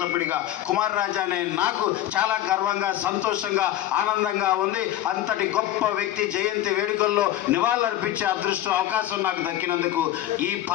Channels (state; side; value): quieter; right; 13.2 dB